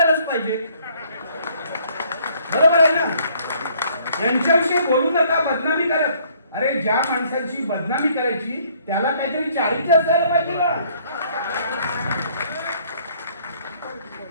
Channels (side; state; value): both; inverted; correlation -0.61